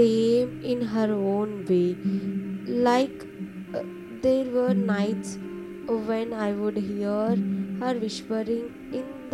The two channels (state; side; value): identical; both; correlation 1.00